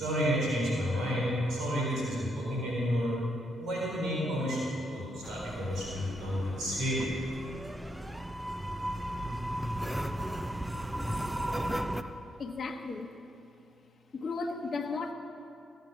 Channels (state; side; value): normal; both; correlation 0.78